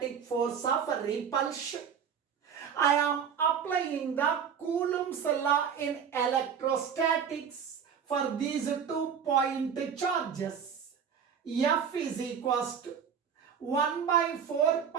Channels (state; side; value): quieter; left; 7.4 dB